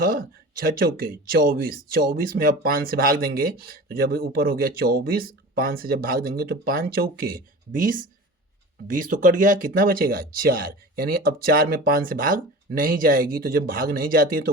6 चौके 24, 24 में अब 5 से भाग देंगे तो जब ऊपर हो गया 24, 5 से जब भाग देंगे तो 5 चौके 20, 20 तो कट गया, कितना बचेगा 4। यानी अब 4 में 5 से भाग नहीं जाएगी, तो जब भाग नहीं जाती है तो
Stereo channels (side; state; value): both; normal; correlation 0.36